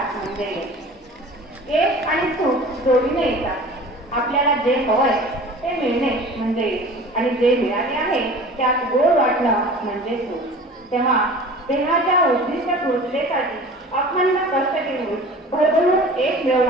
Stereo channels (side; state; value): both; normal; correlation 0.41